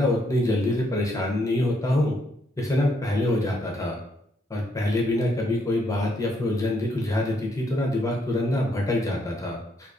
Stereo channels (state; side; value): normal; both; correlation 0.73